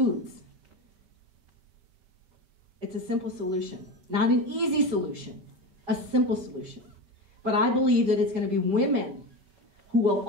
It's a simple solution, not an easy solution, a simple solution. But I believe that it's going to be women who will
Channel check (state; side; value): late; left; 5.1 ms